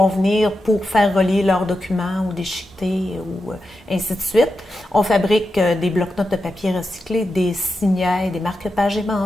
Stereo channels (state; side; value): normal; both; correlation 0.89